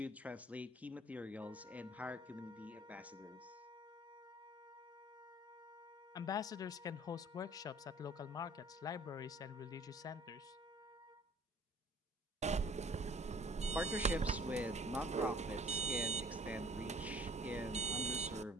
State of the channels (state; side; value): normal; both; correlation 0.53